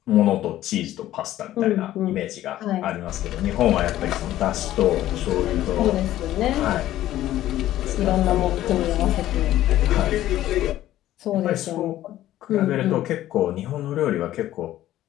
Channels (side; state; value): right; quieter; 13.8 dB